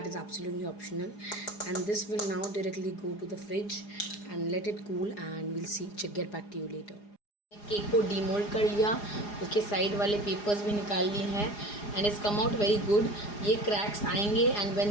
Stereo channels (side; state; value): right; late; 4.9 ms